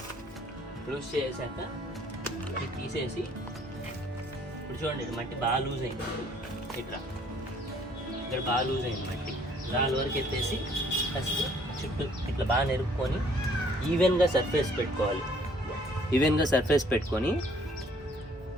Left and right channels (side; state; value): both; normal; correlation 0.60